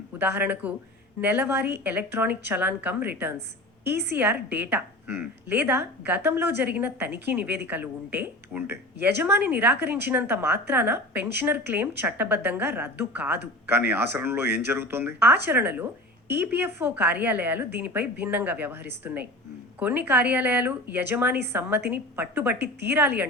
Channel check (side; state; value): both; normal; correlation 0.35